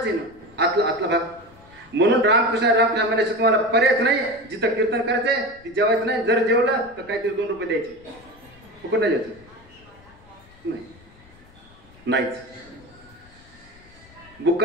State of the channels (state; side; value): noise; left; rumble, 26 dB below the sound